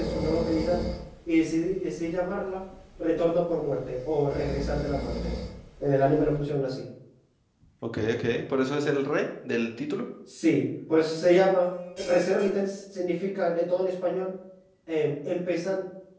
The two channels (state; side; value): identical; both; correlation 1.00